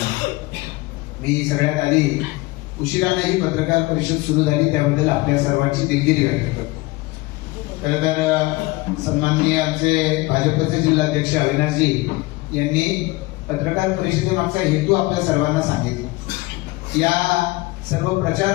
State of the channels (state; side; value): quieter; right; 21.9 dB